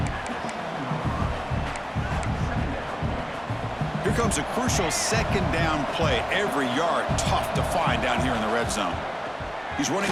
Here comes a crucial 2nd down play. Every yard tough to find down here in the red zone. He's running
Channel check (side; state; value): both; identical; correlation 1.00